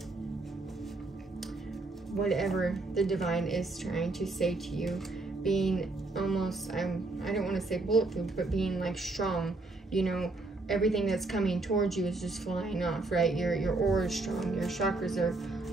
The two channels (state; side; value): quieter; left; 3.2 dB